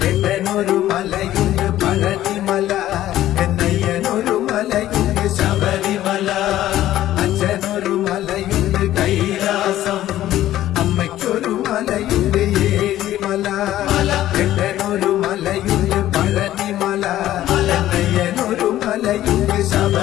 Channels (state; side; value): quieter; right; 13.6 dB